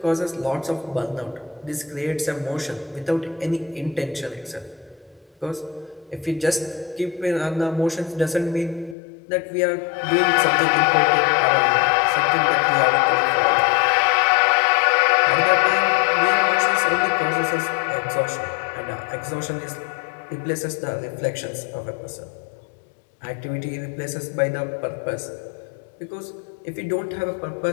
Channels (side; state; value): right; drops out; at 9.0 s